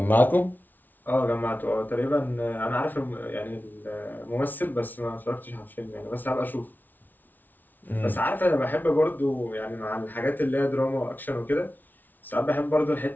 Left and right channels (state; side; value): late; right; 0.084 ms